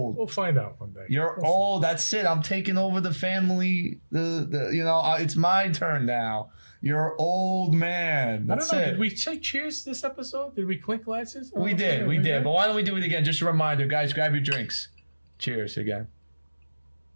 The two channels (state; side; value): inverted; both; correlation -1.00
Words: We'll find out one day. You're We'll old. That's it. I'm taking over the family. It's my turn now. You're old man. I That's don't know. it. Did we say cheers this episode? Did we clink glasses? We did. But why don't we do it again? Just a reminder, guys. Grab your drinks. Cheers again.